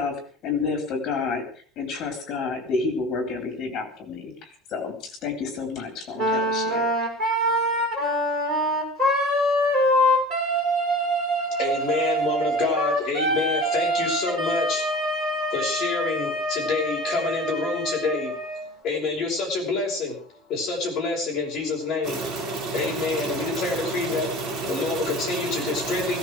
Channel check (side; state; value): both; normal; correlation 0.38